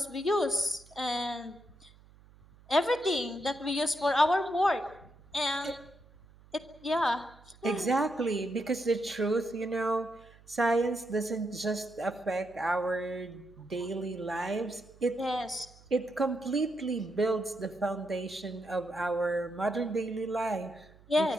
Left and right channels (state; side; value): noise; right; hum, 25 dB below the sound